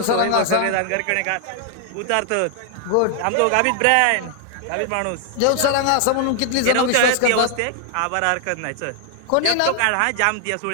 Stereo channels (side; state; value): both; different; correlation 0.00